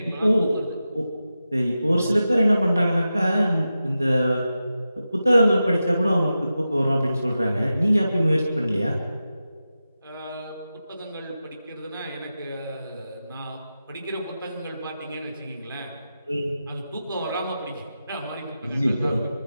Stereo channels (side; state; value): both; inverted; correlation -0.91